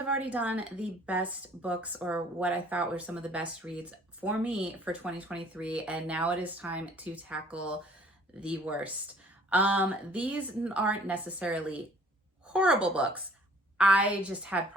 already done the best books, or what I thought were some of the best reads for me for 2023, and now it is time to tackle the worst. These aren't necessarily horrible books. I just had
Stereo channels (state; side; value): normal; both; correlation 0.55